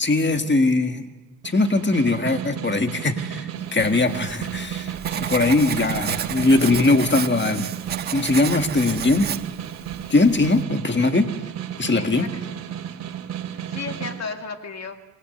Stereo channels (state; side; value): normal; both; correlation 0.52